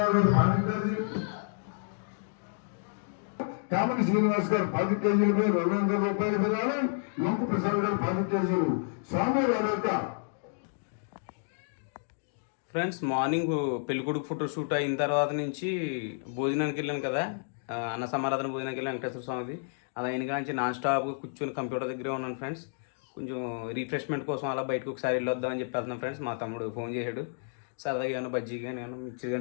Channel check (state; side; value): silent; right; digital silence